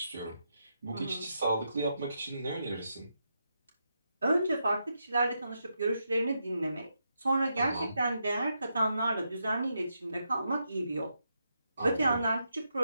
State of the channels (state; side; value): inverted; both; correlation -0.83